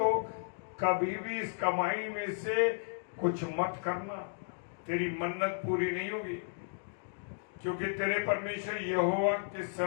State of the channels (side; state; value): right; silent; digital silence